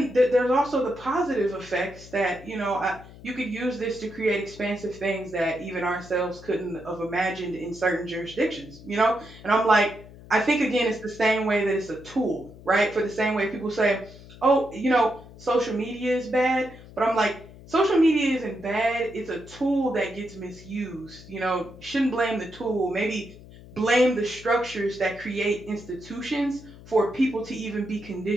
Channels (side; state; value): left; noise; hum, 19 dB below the sound